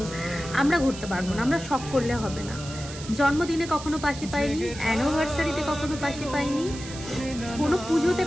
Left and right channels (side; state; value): right; noise; hiss, 13 dB below the sound